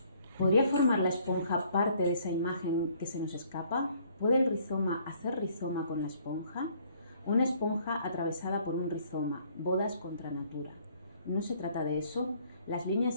¿podría formar la esponja parte de esa imagen que se nos escapa? ¿Puede el rizoma hacer rizoma con la esponja? Una esponja atravesada por un rizoma, bodas contra natura. No se trata de eso. Las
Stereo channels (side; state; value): both; inverted; correlation -0.62